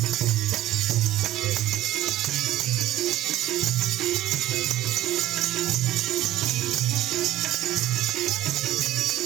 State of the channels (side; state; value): left; quieter; 14.5 dB